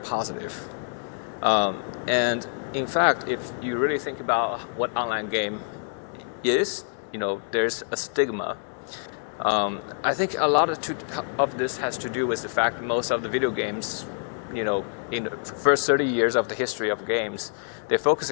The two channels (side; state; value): right; silent; digital silence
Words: And in fact, if you really think about what online game is, there's a stigma. I think a lot of this has to do with the fact most of the video games, in the first 30 years of the history of games, they're